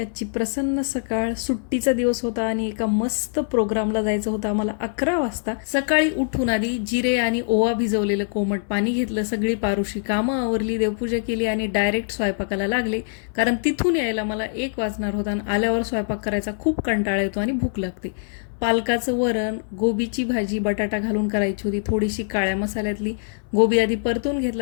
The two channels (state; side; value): silent; right; 63 dB below the other